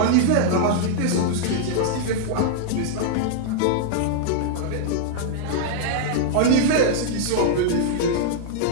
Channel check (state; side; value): different; both; correlation -0.01